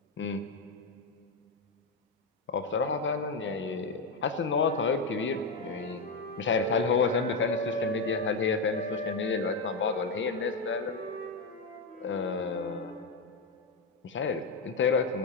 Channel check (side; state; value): right; quieter; 3.8 dB